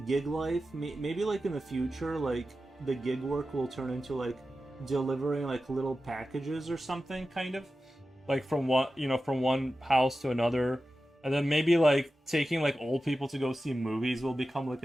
gig life, maybe like in the future, like the gig work will turn into like delivering like little packages or something, kind of like from from one house to another, and then maybe like taking like old people to go see movies will become like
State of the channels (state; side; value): normal; both; correlation 0.93